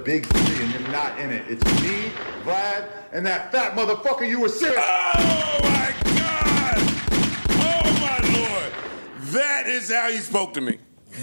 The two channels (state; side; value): inverted; both; correlation -1.00